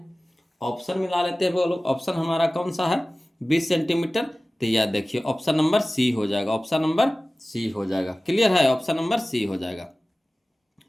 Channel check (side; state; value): both; normal; correlation 0.97